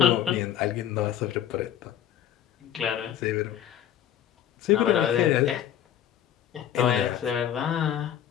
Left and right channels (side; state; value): right; quieter; 10.5 dB